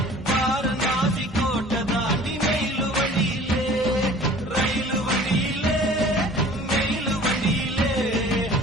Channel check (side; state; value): both; normal; correlation 0.47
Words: வாரணாசி கோட்டை தாண்டி மெயிலு வண்டியிலே ரயிலு வண்டியிலே மெயிலு வண்டியிலே